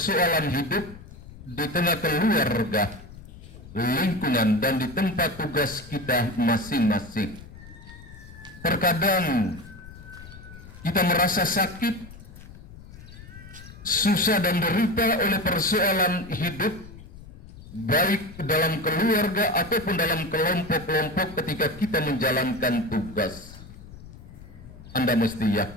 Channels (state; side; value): noise; left; rumble, 17 dB below the sound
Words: hidup di tengah keluarga, lingkungan, dan di tempat tugas kita masing-masing. Terkadang kita merasa sakit, susah dan derita oleh persoalan hidup, baik dalam keluarga ataupun dalam kelompok-kelompok ketika kita menjalankan tugas. Anda mesti